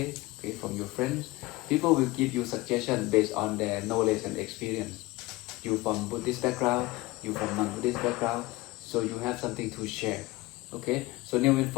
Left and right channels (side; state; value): right; quieter; 20.5 dB